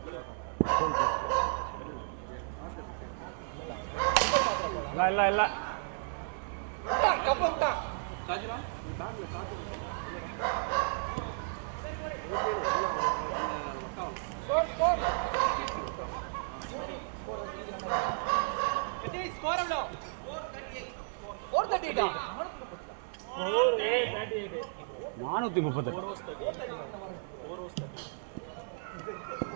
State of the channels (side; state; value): left; silent; 55 dB below the other